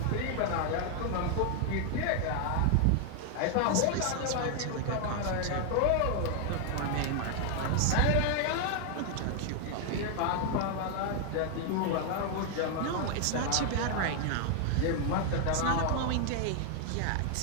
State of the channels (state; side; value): different; both; correlation 0.00